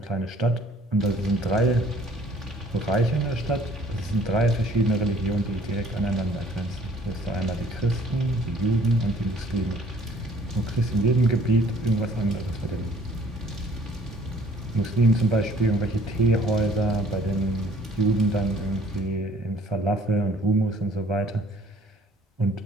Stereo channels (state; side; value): normal; both; correlation 0.57